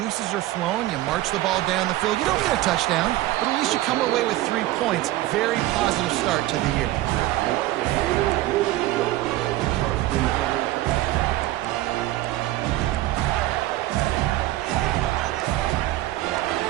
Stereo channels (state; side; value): quieter; left; 16.3 dB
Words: are flowing, you march the ball down the field. You don't get a touchdown, but at least you come away with 3 points. Very positive start to the year.